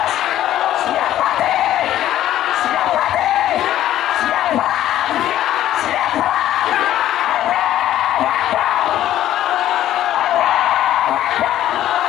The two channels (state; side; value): quieter; right; 12.6 dB